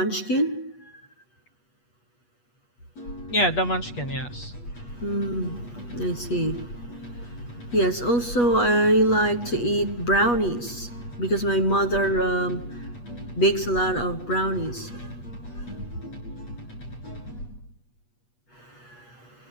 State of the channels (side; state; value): right; late; 8.3 ms